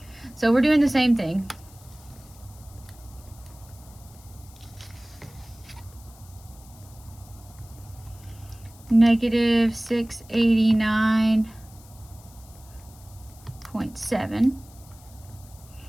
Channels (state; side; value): noise; left; hiss, 24 dB below the sound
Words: So we're doing the same thing. Negative 689.7